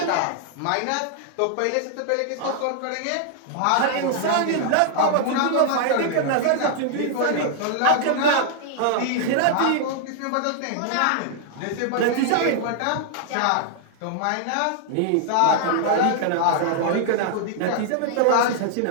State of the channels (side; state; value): both; different; correlation -0.01